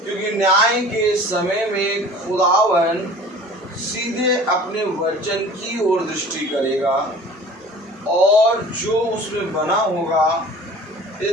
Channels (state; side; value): normal; both; correlation 0.44